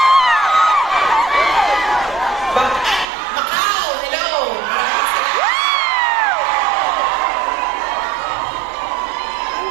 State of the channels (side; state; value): left; drops out; at 3.1 s